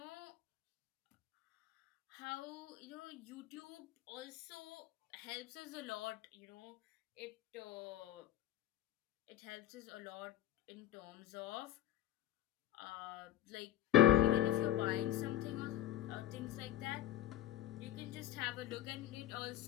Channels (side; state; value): right; quieter; 12.9 dB